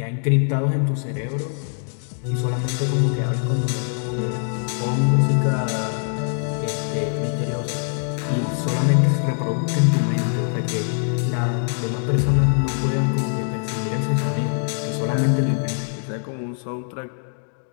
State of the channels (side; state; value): right; silent; 63 dB below the other